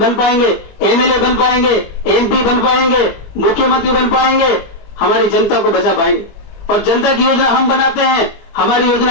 बन पाएंगे, एमएलए बन पाएंगे, एमपी बन पाएंगे, मुख्यमंत्री बन पाएंगे, हमारी जनता को बचा पाएंगे। और जनता की योजना हम बनाते हैं, हमारी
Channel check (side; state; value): right; late; 22 ms